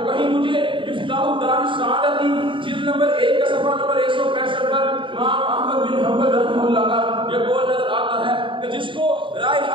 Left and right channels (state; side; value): late; left; 0.24 ms